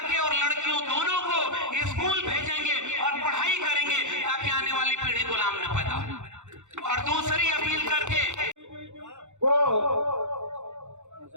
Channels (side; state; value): left; late; 0.84 ms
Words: और लड़कियों दोनों को स्कूल भेजेंगे और पढ़ाई करेंगे ताकि आने वाली पीढ़ी गुलाम न पैदा हो। और दूसरी अपील करके